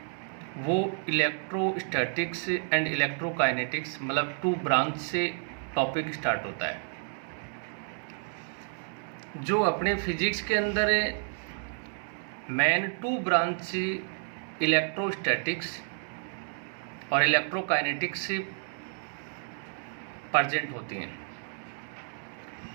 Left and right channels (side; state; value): left; silent; 57 dB below the other